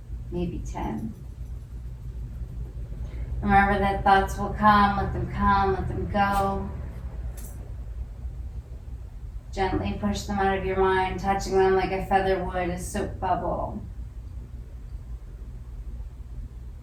maybe 10. Remember that thoughts will come, let them go. Gently push them out of your mind, touching them like a feather would, a soap bubble.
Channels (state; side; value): identical; both; correlation 1.00